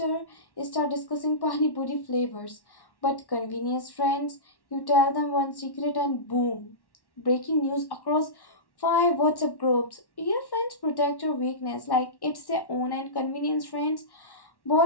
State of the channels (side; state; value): right; late; 1.1 ms